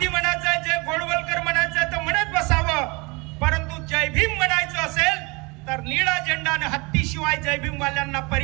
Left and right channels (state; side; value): quieter; left; 27.2 dB